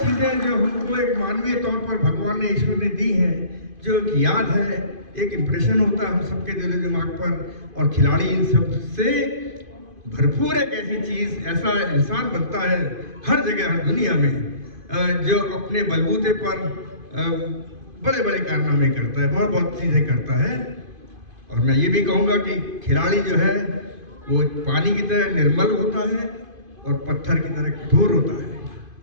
जो हमको एक मानवीय तौर पर भगवान ने, ईश्वर ने दी हैं, जो एक याद है, एक इम्प्रेशन होता है हम सबके दिल दिमाग पर। और खिलाड़ी इन सब से भरपूर एक ऐसी चीज़, ऐसा इंसान बनता है हर जगह हर दुनिया में जो अपने बलबूते पर बड़े बड़े कारनामे करता है, बहुत बहुत चीज़ें करता है। और मैं ये भी कहूँगा कि खिलाड़ी जो है वो पानी की तरह निर्मल होता है और पत्थर की तरह कठोर होता है।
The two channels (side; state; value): left; late; 2.5 ms